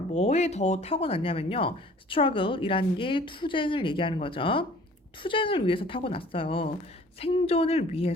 더 타고났냐면요. struggle이라는 게 투쟁을 얘기하는 거죠. 투쟁을 위해서 타고났어요. 생존을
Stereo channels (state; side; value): normal; both; correlation 0.51